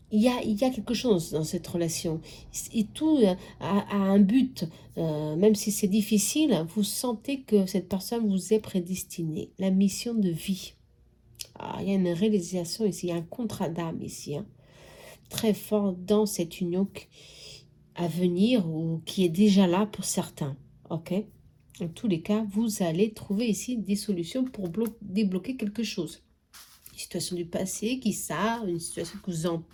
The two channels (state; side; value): identical; both; correlation 1.00